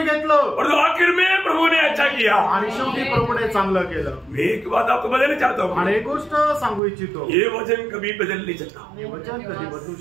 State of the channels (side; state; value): left; drops out; at 6.8 s